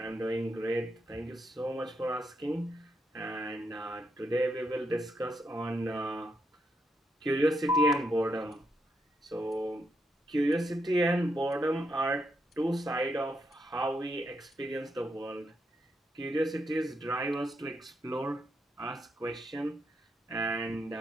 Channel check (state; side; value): normal; both; correlation 0.80